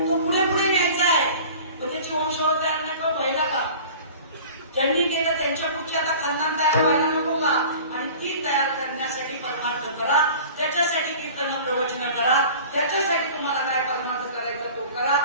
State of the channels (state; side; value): inverted; both; correlation -0.42